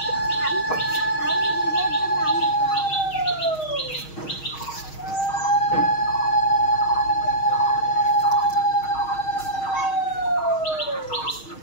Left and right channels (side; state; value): right; late; 6.4 ms